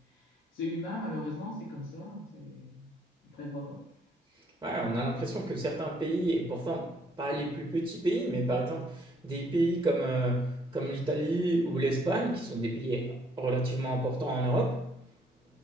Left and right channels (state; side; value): normal; both; correlation 0.66